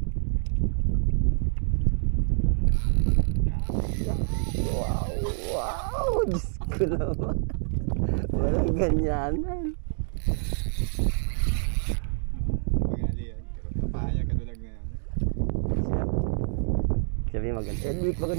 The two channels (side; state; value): left; silent; 60 dB below the other